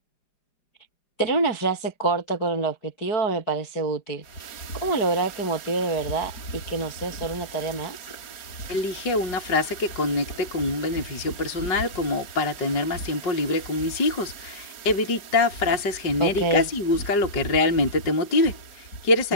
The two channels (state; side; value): late; right; 4.9 ms